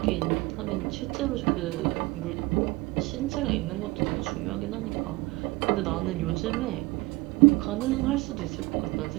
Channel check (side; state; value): left; quieter; 22.1 dB